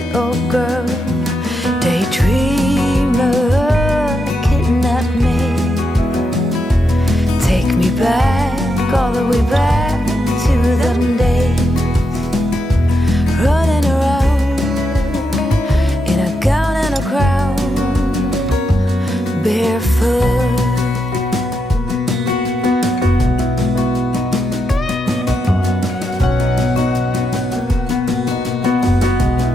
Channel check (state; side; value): normal; both; correlation 0.83